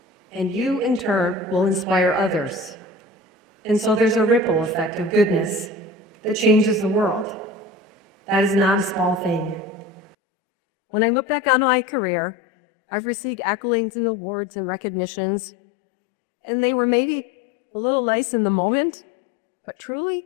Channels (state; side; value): drops out; right; at 10.2 s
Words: And you, in turn, will inspire others. And so there's a ripple effect of goodness that changes the world. That is not a small thing. When I look back on my career, I've received accolades and awards and recognitions, and they were maybe a little nice in the moment, but